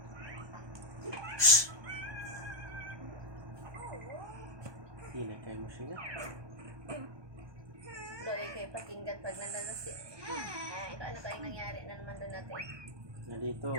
Hindi na kayo mo siya. Doy, kayo pakinggan pag nandun si... ano kayong nangyari na naman doon natin? Na dito,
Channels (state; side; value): late; left; 1.2 ms